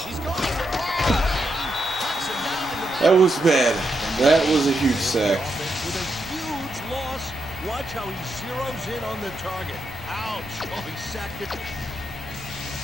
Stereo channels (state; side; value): normal; both; correlation 0.83